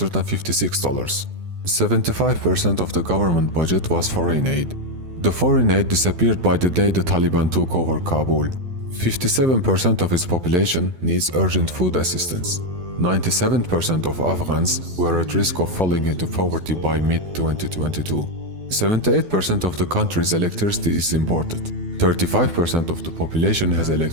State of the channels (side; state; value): left; late; 12 ms